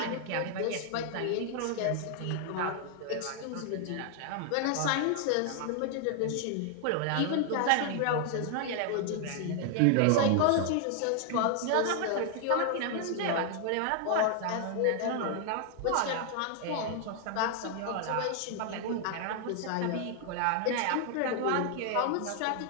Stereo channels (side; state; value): both; different; correlation 0.00